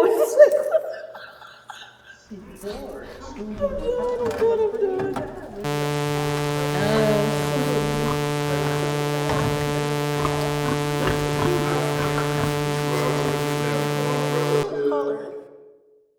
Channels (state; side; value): identical; both; correlation 1.00